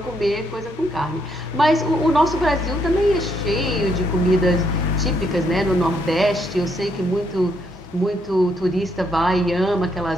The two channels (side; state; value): both; normal; correlation 0.74